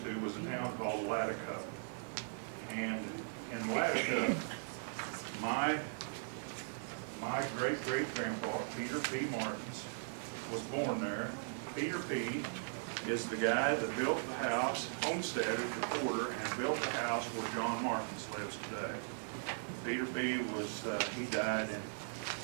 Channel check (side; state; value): left; silent; 52 dB below the other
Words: to was a town called Latticup. And in Latticup, my great-great-grandpa, Peter P. Martens, was born there. Peter P. is the guy that built the house, homesteaded the quarter, and built the house where John Martens lives today. Peter P. was, he died in